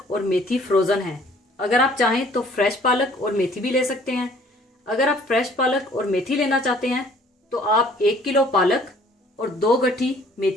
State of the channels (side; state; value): both; normal; correlation 0.56